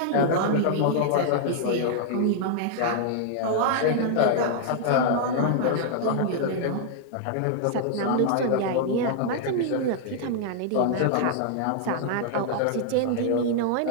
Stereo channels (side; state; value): both; different; correlation -0.01